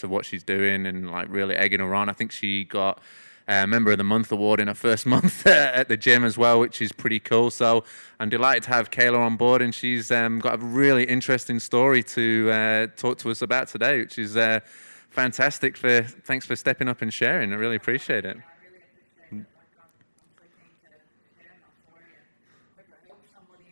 of what she's doing and like really egging her on. I think she got Member of the Month award in her first month at the gym as well, which is pretty cool. So I'm delighted to have Kailah on board, and she's got a really interesting story to talk to us about today, which is fantastic. Thanks for stepping up and sharing. Thank I really you for appreciate having it. me. I really appreciate it. Like I'm so keen to share my story and hope it helps somebody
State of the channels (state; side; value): inverted; both; correlation -1.00